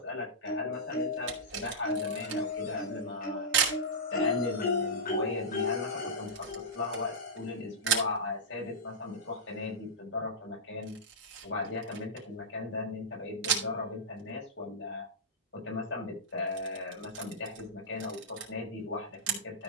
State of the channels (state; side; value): normal; both; correlation -0.13